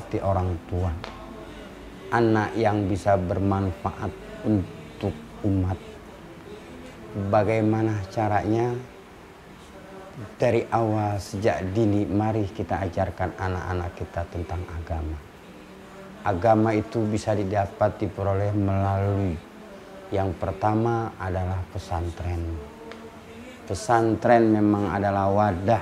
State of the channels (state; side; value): identical; both; correlation 1.00